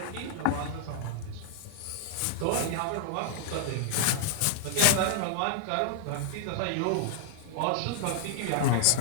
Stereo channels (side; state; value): both; different; correlation -0.01